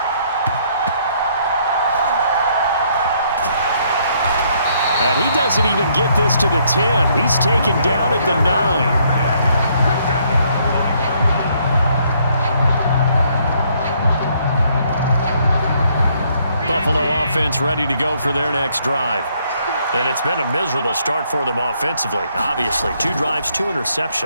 And he doesn't even get this to the 10. He's taken down at the 9. Buffalo offense ready to go for their next drive. And it's been a miserable start for them offensively. Obviously, 2 drives, 2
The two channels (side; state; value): both; inverted; correlation -0.68